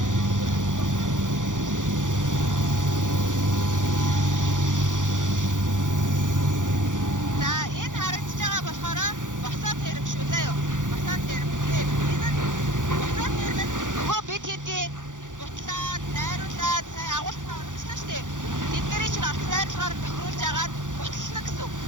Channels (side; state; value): left; late; 0.87 ms